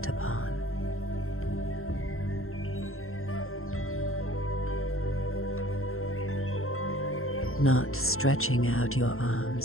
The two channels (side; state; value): right; late; 0.62 ms